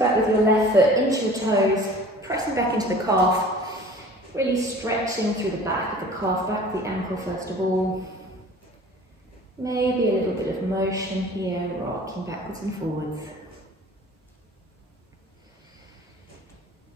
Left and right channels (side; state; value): both; normal; correlation 0.45